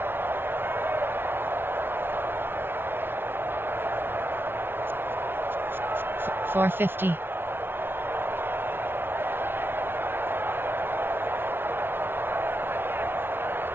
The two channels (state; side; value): late; left; 0.11 ms